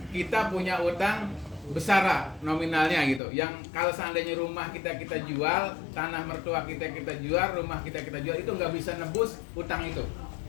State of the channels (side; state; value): right; drops out; at 3.2 s